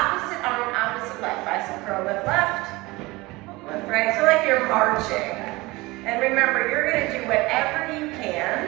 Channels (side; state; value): left; quieter; 21.8 dB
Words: arm, opposite leg. Bicep curl, lift left, lift right. So like you're marching. And remember, you're going to do whatever you